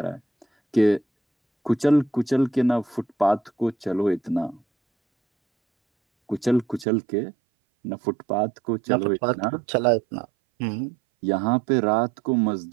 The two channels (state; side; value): drops out; left; at 6.9 s